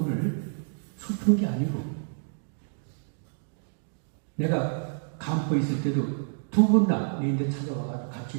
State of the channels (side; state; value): left; silent; digital silence